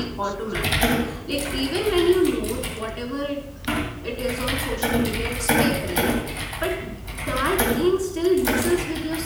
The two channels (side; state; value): both; identical; correlation 1.00